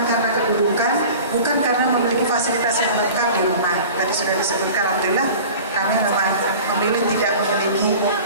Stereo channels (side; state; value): both; inverted; correlation -0.39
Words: karena kedudukan, bukan karena memiliki fasilitas yang lengkap di rumah. Tadi sudah disebutkan, alhamdulillah kami memang memilih tidak memiliki